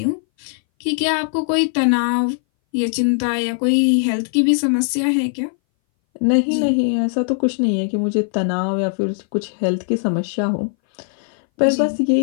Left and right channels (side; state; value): right; silent; 61 dB below the other